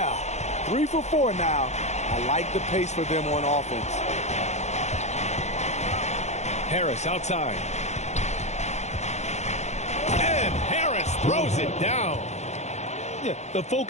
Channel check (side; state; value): right; late; 0.33 ms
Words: 3 for 4 now. I like the pace for them on offense. Harris outside. And Harris throws it down. Yeah, the